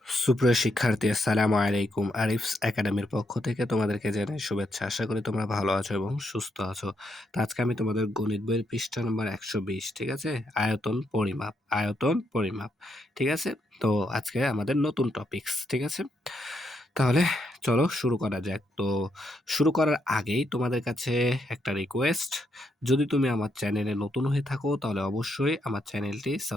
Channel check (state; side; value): normal; both; correlation 0.79